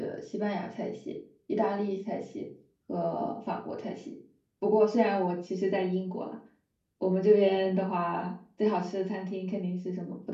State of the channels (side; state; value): both; identical; correlation 1.00